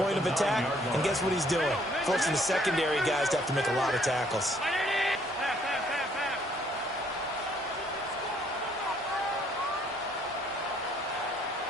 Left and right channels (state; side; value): normal; both; correlation 0.65